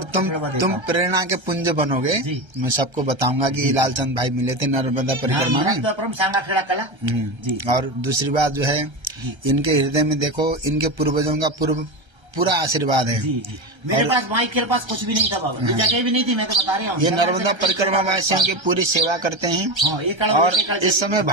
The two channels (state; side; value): late; left; 1.3 ms